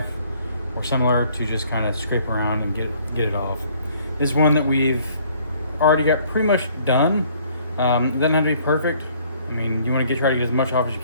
or similar to just kind of scrape around and get it off. This one that we've already got pretty much done. It doesn't have to be perfect. I mean, you want to try to get as much off as you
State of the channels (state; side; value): inverted; both; correlation -0.61